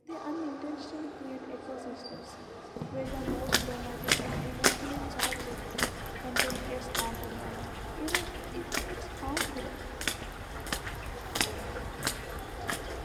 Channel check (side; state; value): both; identical; correlation 1.00